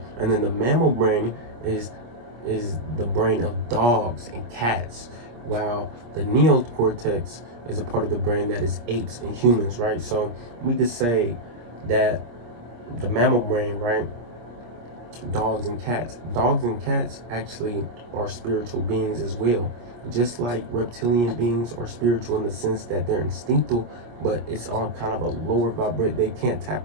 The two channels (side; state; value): left; late; 25 ms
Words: and then the mammal brain is the brain of dogs and cats, while the neocortex is a part of the brain that is apes and humans, right? So we could say that the mammal brain, right, dogs and cats actually are spiritual beings as well, just like reptilian beings are spiritual in the sense that they're instinctual, but it's on kind of a lower vibrate. They can't